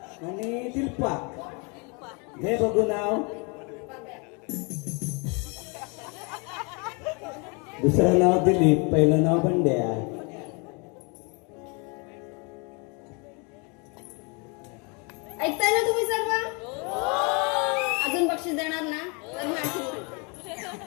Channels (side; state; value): right; quieter; 32.2 dB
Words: आणि दिलपा. घे बघू नाव. दुसरं नाव दिलीप, पहिलं नाव बंड्या. ऐकताय ना तुम्ही सर्व? अजून बक्षीस देणार ना? तर मी आणखी म्हणते.